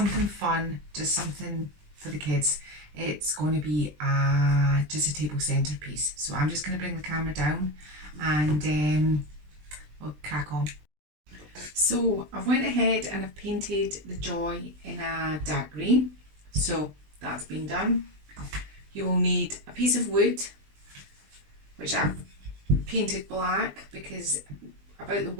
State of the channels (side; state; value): left; late; 20 ms